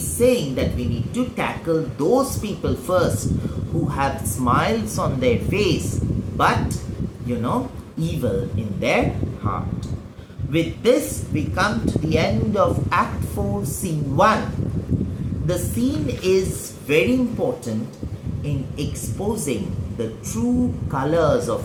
saying that we need to tackle those people first who have smiles on their face but evil in their heart. With this we come to the end of Act 4, Scene 1. The scene is very important in exposing the true colors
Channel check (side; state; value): both; identical; correlation 1.00